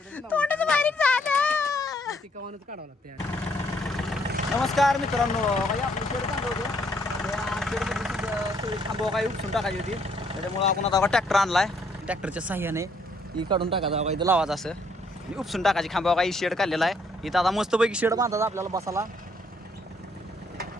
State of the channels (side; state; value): both; normal; correlation 0.68